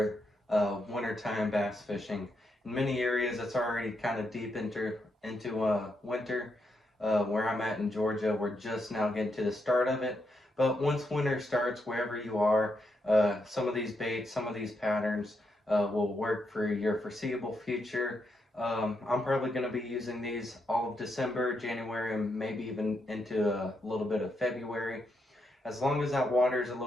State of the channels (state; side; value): normal; both; correlation 0.81